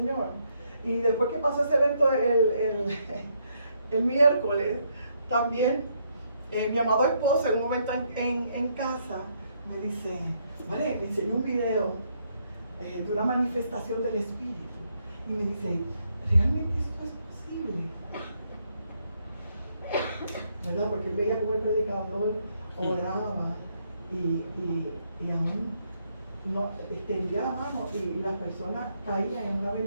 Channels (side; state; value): both; inverted; correlation -0.74